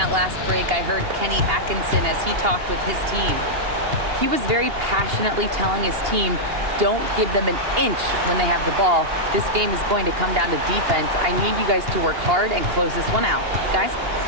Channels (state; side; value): late; left; 2.8 ms